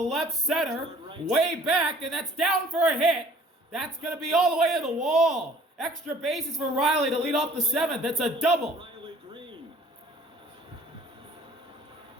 center, way back, and that's down for a hit. That's going to be all the way to the wall. Extra bases for Riley to lead off the 7th. That's a double. Riley Green.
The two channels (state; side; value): normal; both; correlation 0.54